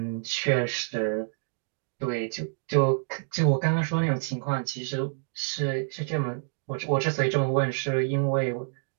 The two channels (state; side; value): silent; left; digital silence